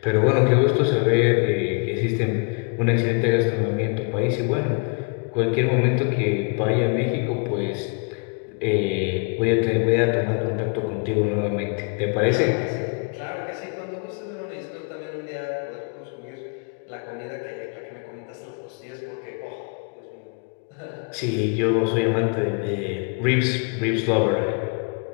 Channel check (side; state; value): right; quieter; 36.4 dB